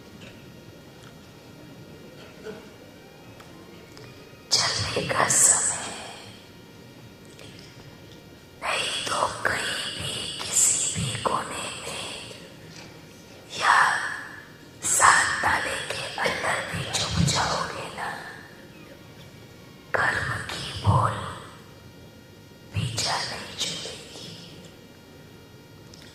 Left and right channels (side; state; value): both; identical; correlation 1.00